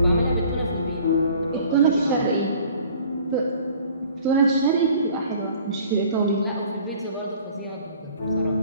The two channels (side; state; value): both; inverted; correlation -0.51